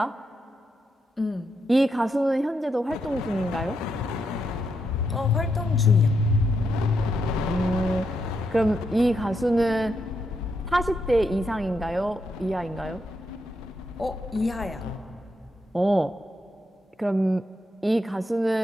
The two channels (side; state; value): both; normal; correlation 0.82